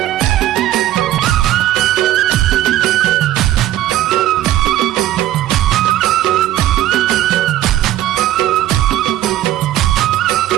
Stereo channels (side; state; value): left; quieter; 13.7 dB